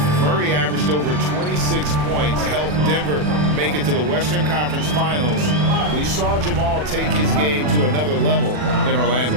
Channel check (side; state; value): left; late; 40 ms